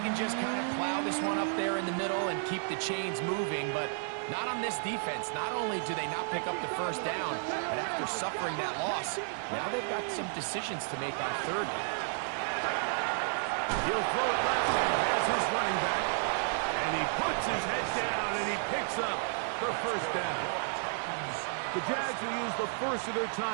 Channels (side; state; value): left; silent; digital silence